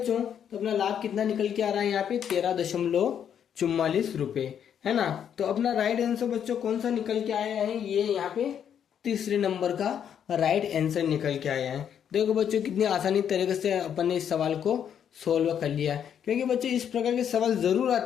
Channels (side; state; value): right; quieter; 8.7 dB